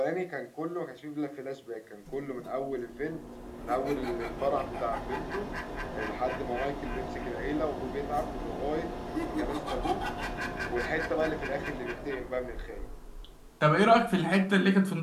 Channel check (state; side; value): identical; both; correlation 1.00